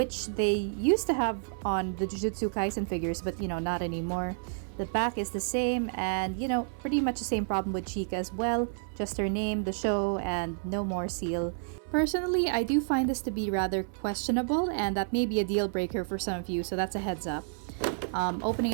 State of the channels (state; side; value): silent; left; 57 dB below the other